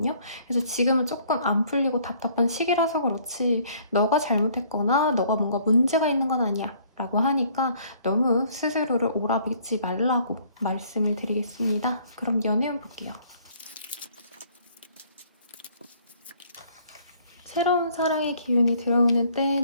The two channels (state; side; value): inverted; both; correlation -0.60